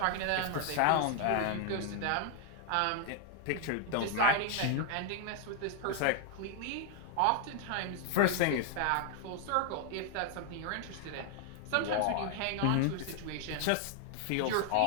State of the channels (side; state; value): both; different; correlation 0.00